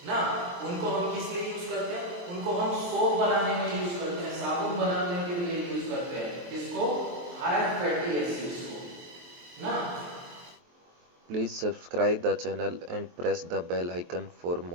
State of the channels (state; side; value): late; left; 23 ms